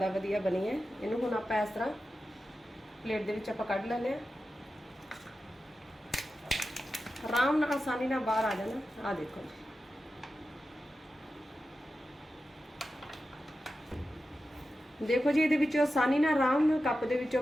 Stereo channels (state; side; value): normal; both; correlation 0.92